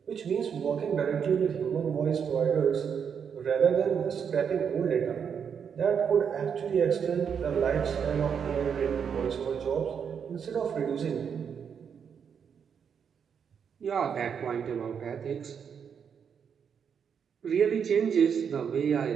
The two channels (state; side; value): quieter; left; 7.2 dB